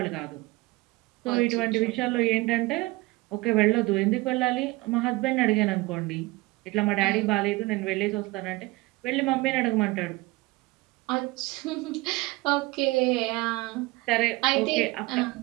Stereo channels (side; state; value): left; quieter; 21.9 dB